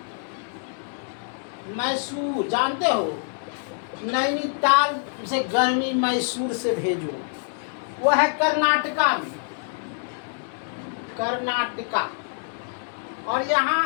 मैसूर जानते हो, नैनीताल से गर्मी मैसूर से भेजो, वो है कर्नाटका में। कर्नाटका। और यहाँ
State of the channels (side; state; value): right; silent; 61 dB below the other